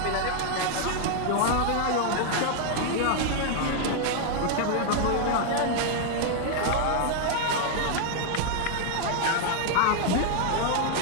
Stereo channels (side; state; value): both; different; correlation 0.00